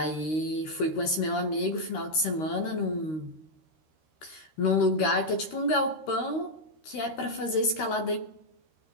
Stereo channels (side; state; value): right; late; 13 ms